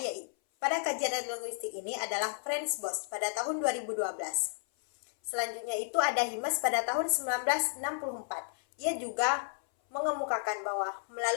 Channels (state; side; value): silent; right; 56 dB below the other